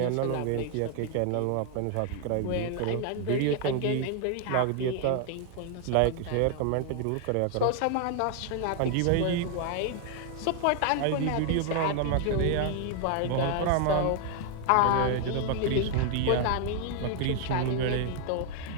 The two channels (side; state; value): both; different; correlation 0.00